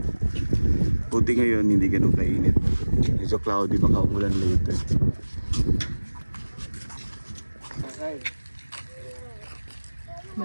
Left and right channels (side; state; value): both; inverted; correlation -1.00